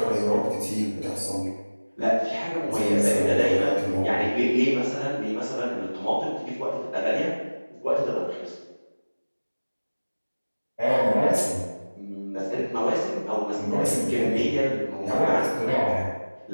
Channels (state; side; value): inverted; both; correlation -1.00